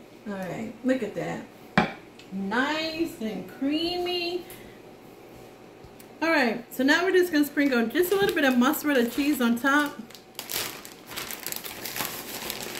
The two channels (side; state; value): both; identical; correlation 1.00